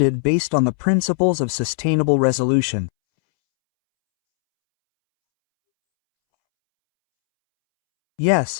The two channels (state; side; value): silent; right; 67 dB below the other